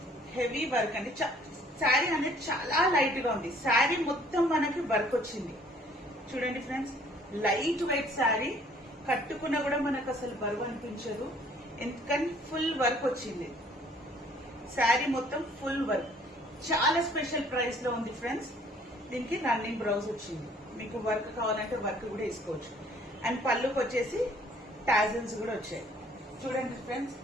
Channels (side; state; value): both; normal; correlation 0.58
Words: heavy work అండి. శారీ అనేది చాలా లైట్ గా ఉంది. శారీ మొత్తం మనకి వర్క్ వచ్చింది. చూడండి ఫ్రెండ్స్, లైట్ వెయిట్ శారీ, కట్టుకున్నా కూడా మనకు అసలు బరువు అనిపించదు. ఎందుకని ఫుల్ వర్క్ వచ్చింది. శారీ మొత్తం ఫుల్ వర్క్, చాలా స్పెషల్ ప్రైస్ లో ఉంది ఫ్రెండ్స్. దీనికి రన్నింగ్ బ్లౌజ్ వచ్చింది. మీకు వర్క్ కావాలంటే వర్క్ కూడా వేసుకోవచ్చు. అండ్ పళ్ళుకి వచ్చేసి టాజిల్స్ కూడా వచ్చాయి. చూడండి ఫ్రెండ్స్,